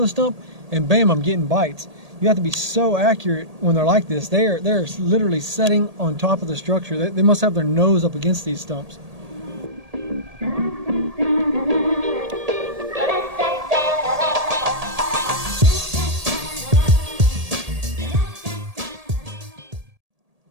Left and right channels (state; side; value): late; left; 1.8 ms